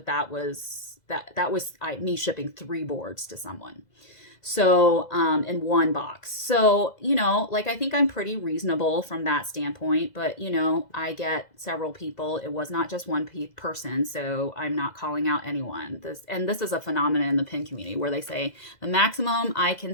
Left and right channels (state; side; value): late; right; 2.0 ms